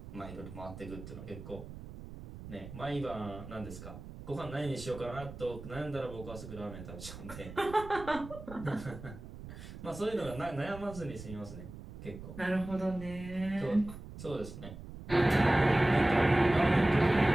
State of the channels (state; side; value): noise; right; rumble, 13 dB below the sound